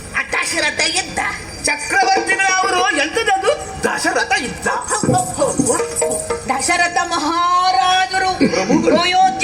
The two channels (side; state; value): both; identical; correlation 1.00